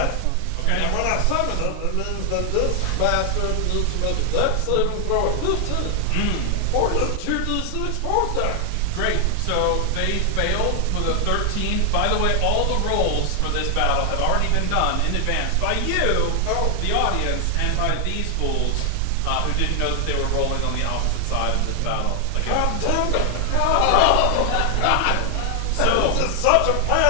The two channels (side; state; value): both; different; correlation 0.00